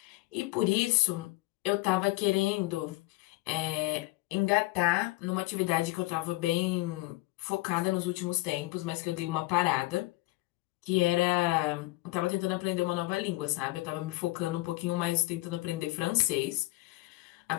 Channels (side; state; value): right; quieter; 20.7 dB